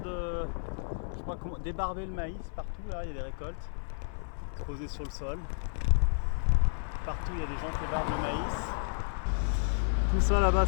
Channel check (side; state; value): right; silent; 55 dB below the other